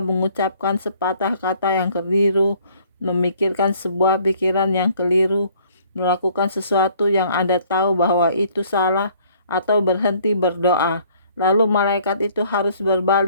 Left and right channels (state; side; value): inverted; both; correlation -0.60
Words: sepatah kata yang keliru, memikirkan sebuah pikiran yang keliru, melakukan sesuatu yang Anda tahu bahwa itu salah, atau berhenti berdoa. Lalu malaikat itu harus